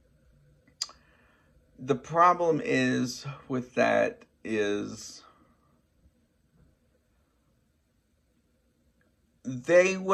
The problem is with that is they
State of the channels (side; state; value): both; identical; correlation 1.00